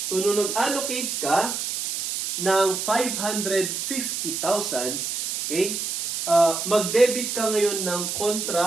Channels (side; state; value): right; noise; hiss, 3 dB below the sound